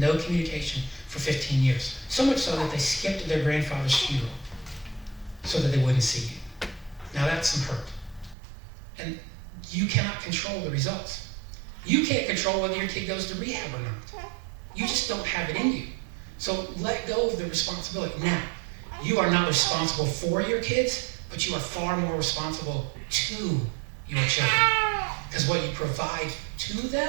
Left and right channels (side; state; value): left; drops out; at 8.3 s